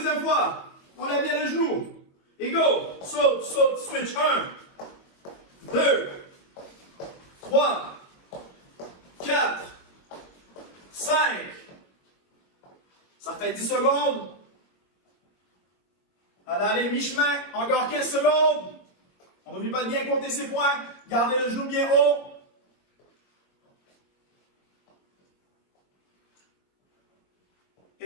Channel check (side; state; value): right; late; 21 ms